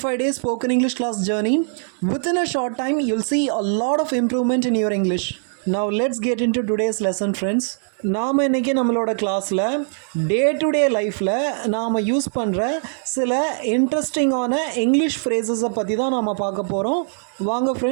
days spoken English class journey. Within a short time, you'll see a lot of improvement in your English. Now let's get into today's lesson, friends. நாம் இன்றைக்கி நம்மளோட கிளாஸில் day to day லைஃப்பில் நாம் use பண்ணுற சில இன்ட்ரெஸ்டிங்கான English ஃப்ரேசஸை பற்றி தான் நாம் பார்க்க போகிறோம். வாங்க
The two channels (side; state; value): left; silent; digital silence